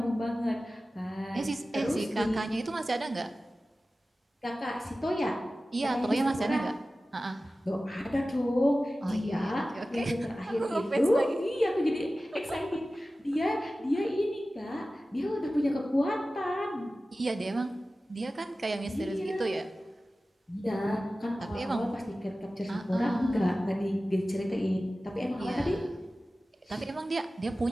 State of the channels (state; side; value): normal; both; correlation 0.96